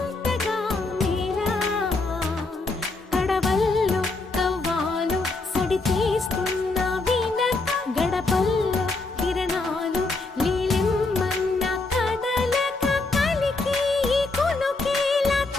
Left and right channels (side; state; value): right; quieter; 3.4 dB